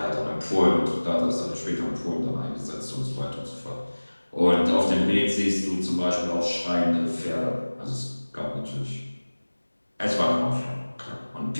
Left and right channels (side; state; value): both; inverted; correlation -1.00